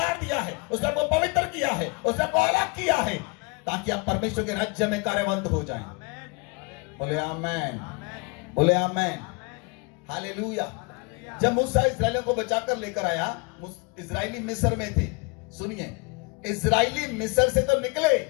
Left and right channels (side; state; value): right; quieter; 30.6 dB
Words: दिया है, उसने आपको पवित्र किया है, उसने आपको अलग किया है, ताकि आप परमेश्वर के राज्य में कार्यवंत हो जाएं। बोले आमेन, बोले आमेन, हालेलुया। जब मूसा इस्राएलियों को बचाकर लेकर आया, इस्राएली मिस्र में थे। सुनिए, इस्राएली मिस्र से तो निकले,